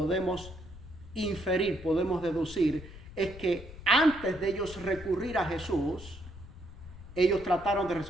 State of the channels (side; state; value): left; noise; rumble, 15 dB below the sound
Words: inferir, podemos deducir, es que antes de ellos recurrir a Jesús, ellos trataron de